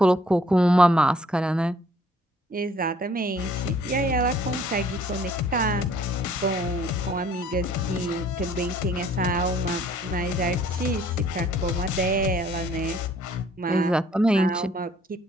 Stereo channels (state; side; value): normal; both; correlation 0.59